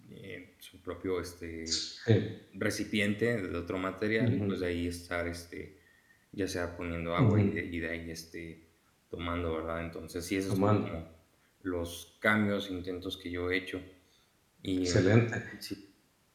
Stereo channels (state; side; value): identical; both; correlation 1.00